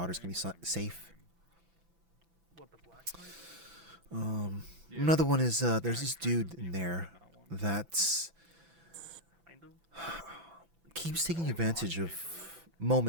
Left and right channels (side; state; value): left; late; 6.0 ms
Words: gonna be safe. Another one is there's this dude in there that keeps taking advantage of